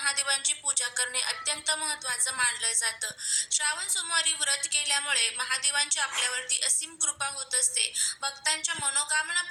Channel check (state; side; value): identical; both; correlation 1.00